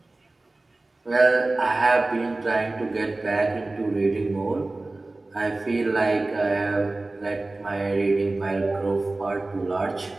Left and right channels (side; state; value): left; quieter; 3.0 dB